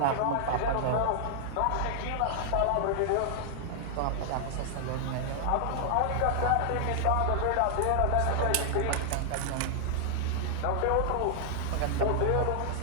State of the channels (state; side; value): different; both; correlation 0.00